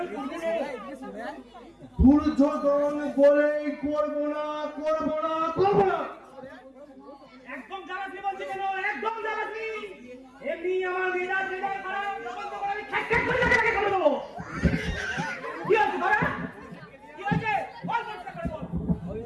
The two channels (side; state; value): both; identical; correlation 1.00